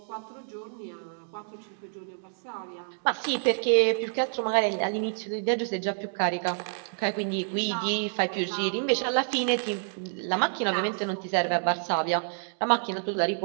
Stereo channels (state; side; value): silent; left; digital silence